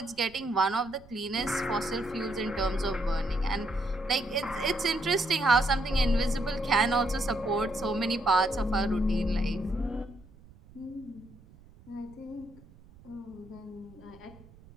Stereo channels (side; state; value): right; noise; rumble, 23 dB below the sound